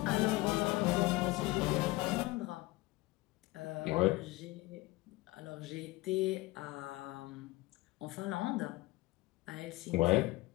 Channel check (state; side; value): quieter; right; 20.8 dB